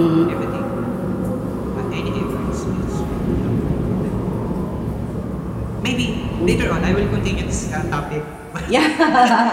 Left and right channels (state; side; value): identical; both; correlation 1.00